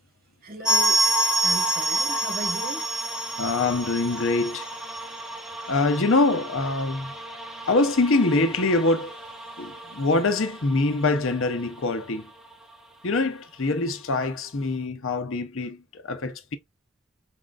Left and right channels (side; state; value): both; normal; correlation 0.34